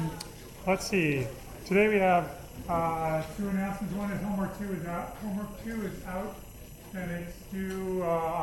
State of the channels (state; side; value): identical; both; correlation 1.00